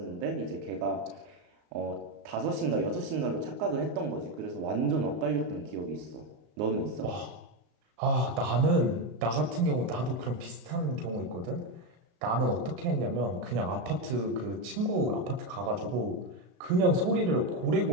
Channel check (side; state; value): left; late; 36 ms